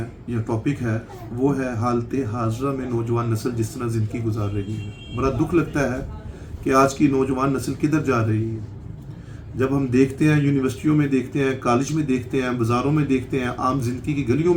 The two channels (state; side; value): identical; both; correlation 1.00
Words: یا ٹاپک ہے وہ ہے حالت حاضرہ میں نوجوان نسل جس طرح زندگی گزار رہی ہے۔ بڑا دکھ لگتا ہے کہ آج کی نوجوان نسل کدھر جا رہی ہے۔ جب ہم دیکھتے ہیں، یونیورسٹیوں میں دیکھتے ہیں، کالج میں دیکھتے ہیں، بازاروں میں دیکھتے ہیں، عام زندگی کی گلیوں